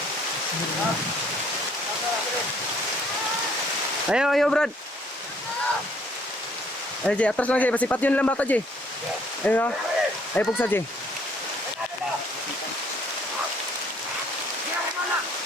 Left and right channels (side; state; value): both; normal; correlation 0.62